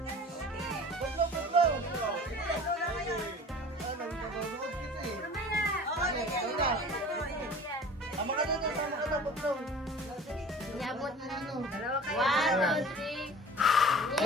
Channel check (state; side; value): normal; both; correlation 0.43